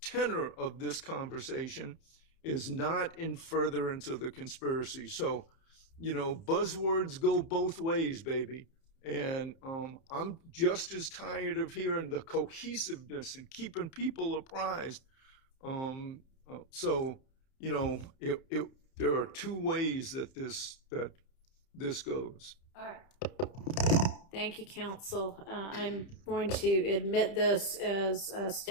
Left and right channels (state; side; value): late; right; 30 ms